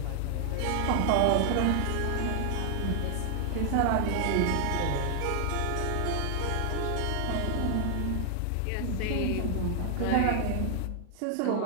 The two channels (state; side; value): different; both; correlation 0.00